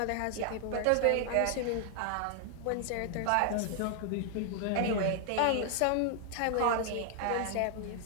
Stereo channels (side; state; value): both; different; correlation 0.00